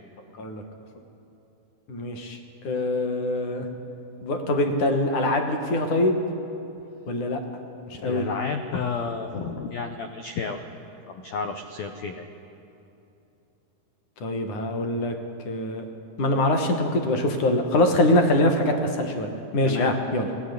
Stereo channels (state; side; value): late; right; 9.9 ms